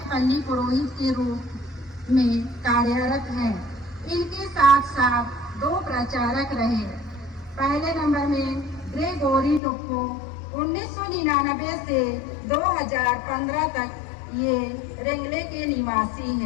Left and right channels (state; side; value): drops out; right; at 9.6 s